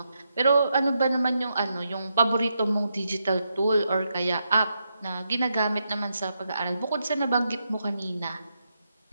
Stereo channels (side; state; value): both; inverted; correlation -0.84